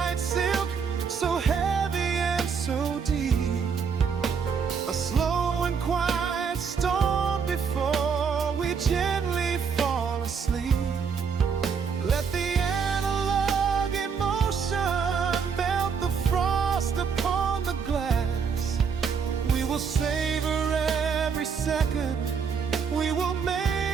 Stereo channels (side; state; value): left; quieter; 6.2 dB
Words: silk, so heavy and so deep. A slow and quiet storm before we gently fall asleep. Let the analog emotion melt the frost upon the glass. We will savor every second, we will